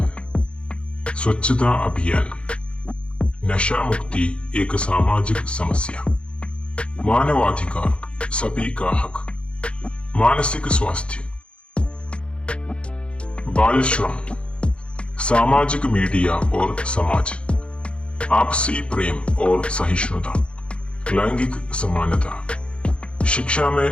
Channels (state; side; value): late; right; 0.058 ms